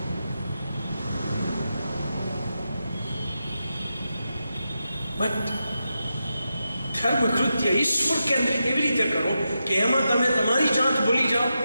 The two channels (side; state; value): both; inverted; correlation -0.88